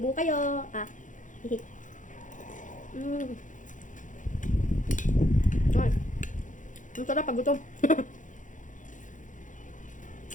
kayo. Hihi. Ay. Ang sarap pag gutom.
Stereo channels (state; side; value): late; right; 0.37 ms